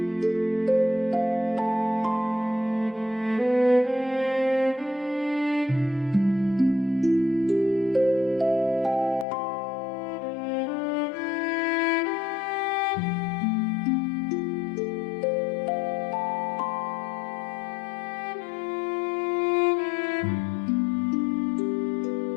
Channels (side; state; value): right; drops out; at 9.2 s